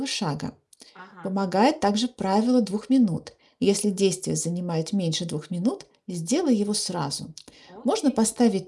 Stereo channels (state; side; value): identical; both; correlation 1.00